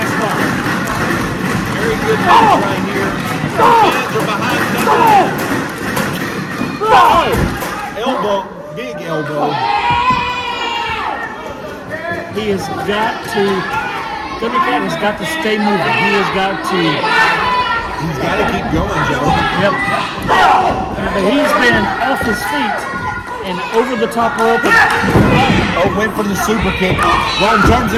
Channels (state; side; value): identical; both; correlation 1.00